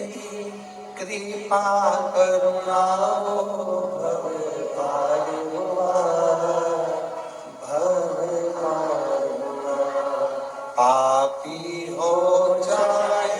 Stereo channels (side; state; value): both; identical; correlation 1.00